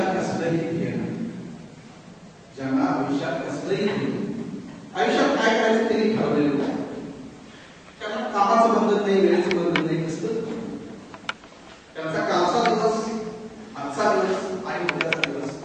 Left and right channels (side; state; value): both; identical; correlation 1.00